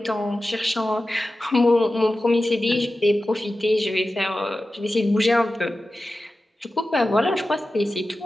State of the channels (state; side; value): normal; both; correlation 0.94